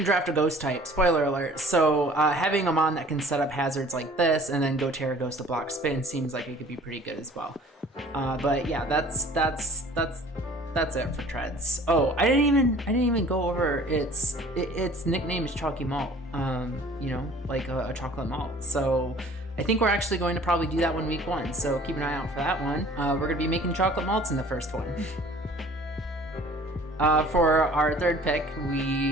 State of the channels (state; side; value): normal; both; correlation 0.50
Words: draft a ghost type, spoiler alert, so having a mon that can set up hazards like this and then go Terra Ghost to block spin seems like it could be pretty good as well. But yeah, that's it for Treads. Oh, I didn't even go over its nickname is Chalky Malt. You know, like a chocolate malt. So I think we're actually going to probably do that one week 1. So keep an eye out for that one. We're gonna be making chocolate malts in the first one. For our third pick,